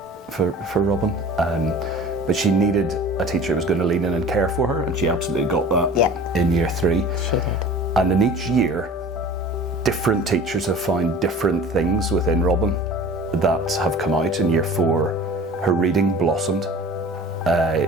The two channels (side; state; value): both; normal; correlation 0.42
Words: Robin, but she needed a teacher who was going to lean in and care for her, and she absolutely got that in year 3. She did. And in each year, different teachers have found different things within Robin that have come out. In year 4, her reading blossomed.